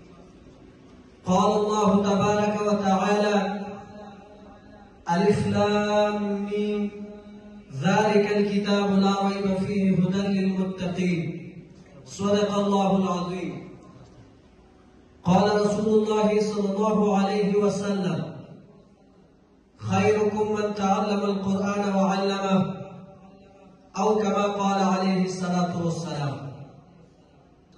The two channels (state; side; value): identical; both; correlation 1.00